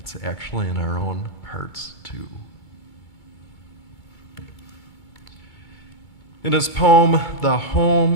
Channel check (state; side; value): late; right; 2.2 ms